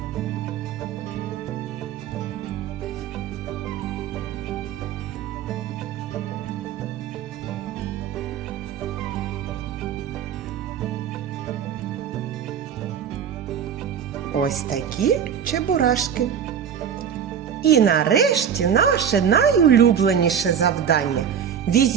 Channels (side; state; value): left; quieter; 8.1 dB